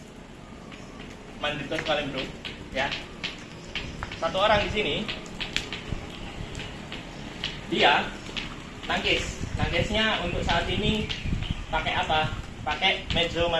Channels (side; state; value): both; identical; correlation 1.00